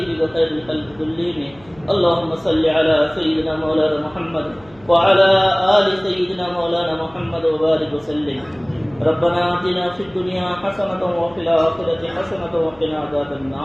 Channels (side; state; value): left; noise; hum, 27 dB below the sound